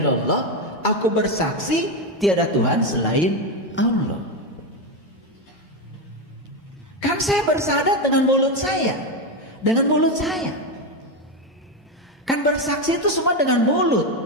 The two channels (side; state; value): both; normal; correlation 0.11